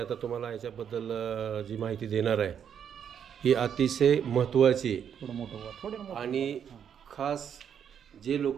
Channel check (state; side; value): quieter; left; 8.3 dB